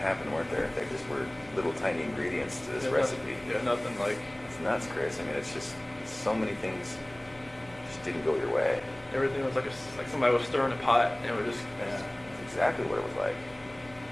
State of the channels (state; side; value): noise; left; hum, 25 dB below the sound